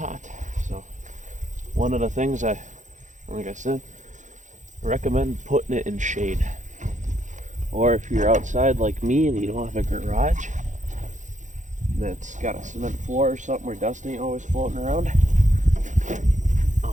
So one of the things like I said, I recommend putting it in shade. Or if you're outside like me and you don't have a garage that's got a cement floor or something where dust ain't always floating around,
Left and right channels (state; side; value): late; left; 0.36 ms